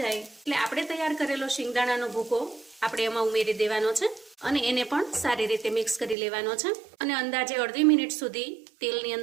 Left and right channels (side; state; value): left; drops out; at 6.2 s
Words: જાય એટલે આપણે તૈયાર કરેલો શેંગદાણાનો ભૂકો આપણે એમાં ઉમેરી દેવાનો છે અને એને પણ સારી રીતે મિક્સ કરી લેવાનો છે અને અંદાજે અડધી મિનિટ સુધી તેલની